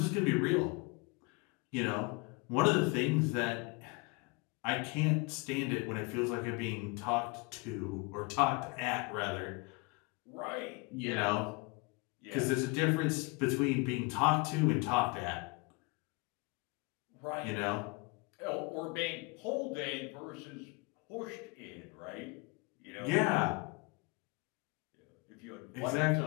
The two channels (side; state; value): right; quieter; 27.7 dB